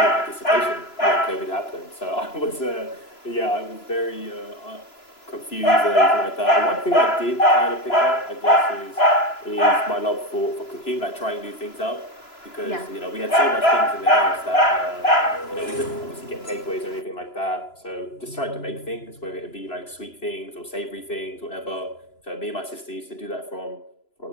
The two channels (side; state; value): right; late; 3.0 ms